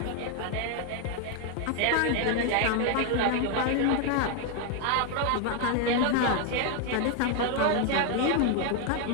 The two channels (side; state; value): both; different; correlation 0.00